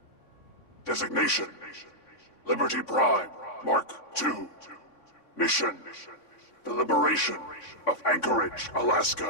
Designation. Liberty Prime, Mark II. Mission. The liberation of Anchorage,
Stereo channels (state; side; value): late; right; 3.6 ms